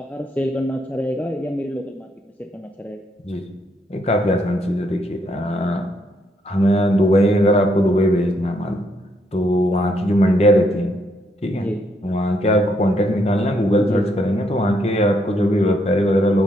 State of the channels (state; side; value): normal; both; correlation 0.74